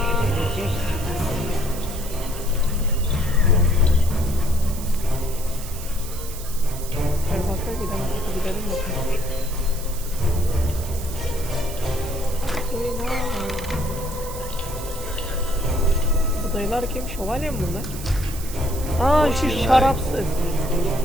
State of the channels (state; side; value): noise; right; hiss, 12 dB below the sound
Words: Gidelim bakalım. Bu dayılar kim? Şövalye mi bunlar? Aa, şu şarapsız.